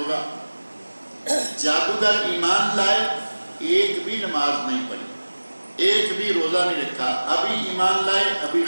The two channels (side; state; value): both; inverted; correlation -1.00